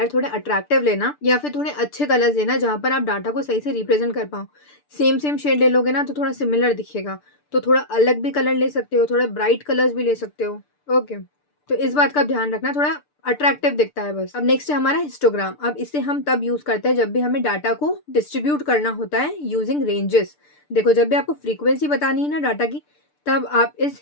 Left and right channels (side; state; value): right; late; 6.8 ms